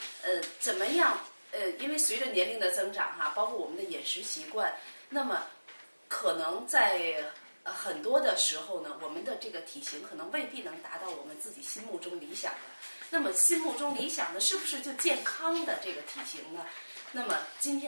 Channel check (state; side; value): inverted; both; correlation -1.00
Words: 怎么样？因为随着年龄的增长哈，包括我们的饮食习惯，那么可能在很多的时候呢，我们的这个体型可能未必能达到我们自己心目中理想的。那么心目中理想的是不是就健康的这个体型呢？那么今